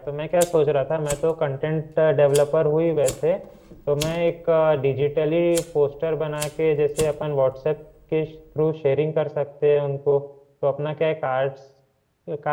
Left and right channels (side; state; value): both; identical; correlation 1.00